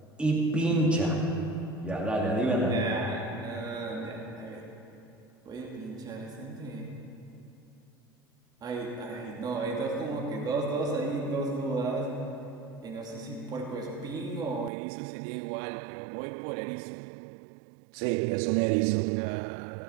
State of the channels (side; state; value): left; drops out; at 14.7 s